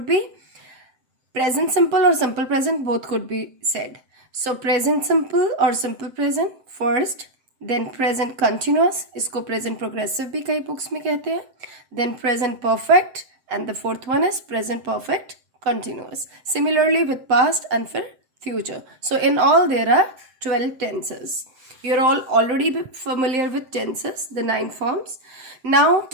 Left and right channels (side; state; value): left; late; 7.8 ms